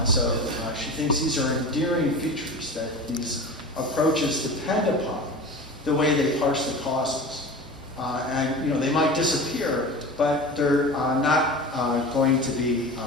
So she thinks these are endearing features that these approaches depend upon the way they parse the causes. And they might disappear, but they're not going to be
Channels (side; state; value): both; normal; correlation 0.33